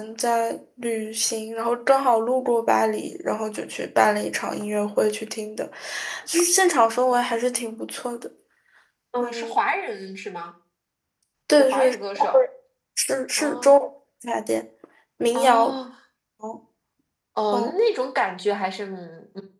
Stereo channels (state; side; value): identical; both; correlation 1.00